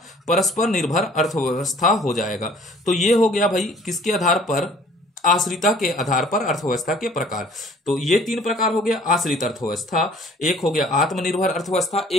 परस्पर निर्भर अर्थव्यवस्था हो जाएगा। तो ये हो गया भाई किसके आधार पर? आश्रिता के आधार पर अर्थव्यवस्था के प्रकार। तो ये तीन प्रकार हो गया आश्रित अर्थव्यवस्था, एक हो गया आत्मनिर्भर अर्थव्यवस्था,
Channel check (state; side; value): normal; both; correlation 0.53